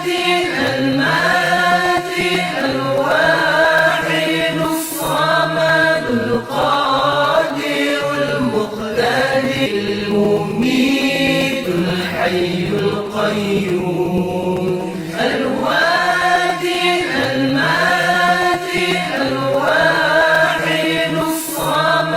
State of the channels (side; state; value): both; identical; correlation 1.00